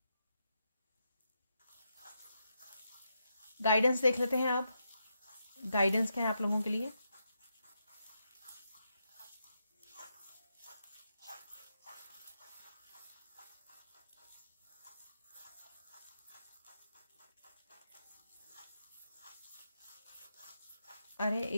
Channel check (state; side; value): inverted; both; correlation -0.83